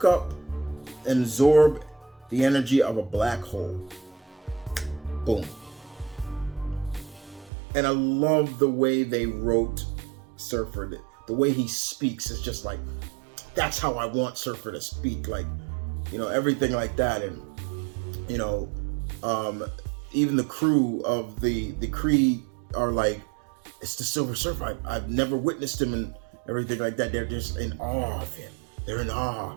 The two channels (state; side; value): drops out; left; at 7.5 s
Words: up and absorb the energy of a black hole. Boom. And I love the way they wrote Surfer. The way he speaks is just like, that's how I want Surfer to speak. Like, everything like that. And, even the crew of the Kree are like, it's the Silver Surfer. I've never witnessed him and everything like that. They're just in awe of him. They're in